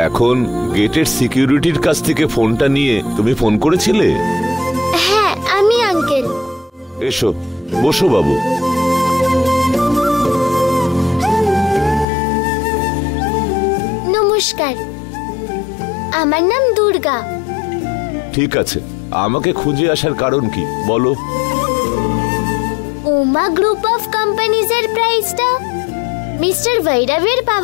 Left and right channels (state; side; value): drops out; right; at 12.1 s